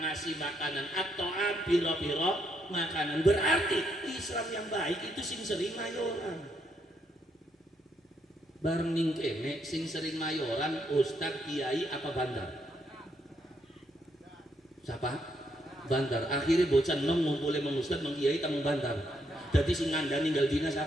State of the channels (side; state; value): both; normal; correlation 0.76